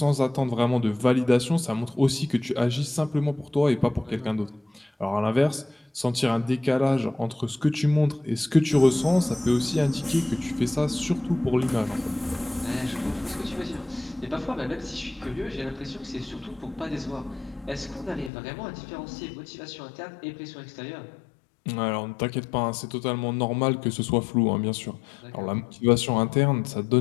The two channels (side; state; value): right; drops out; at 18.3 s